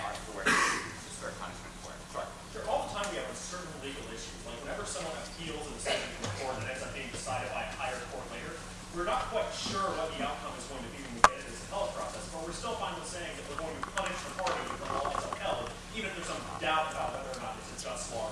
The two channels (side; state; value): both; identical; correlation 1.00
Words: are forced to serve punishment for it. Sure. All the time we have certain legal issues. Like whenever someone appeals a decision to the court that ends up being decided by a higher court later, we're not quite sure what the outcome is going to be when we get into this appellate process, but we're still fine with saying that we're going to punish the party if the law is upheld, even if there's some doubt about whether or not it's a just law